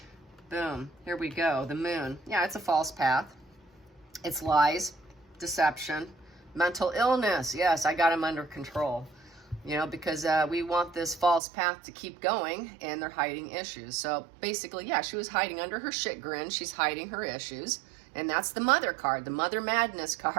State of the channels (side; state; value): left; drops out; at 11.4 s